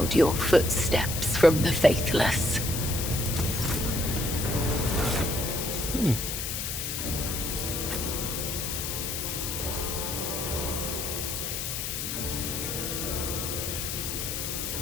your footsteps from the faithless.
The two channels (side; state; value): left; noise; hiss, 3 dB below the sound